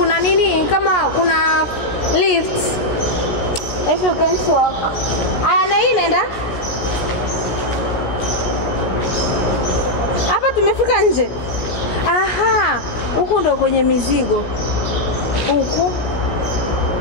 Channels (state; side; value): late; right; 17 ms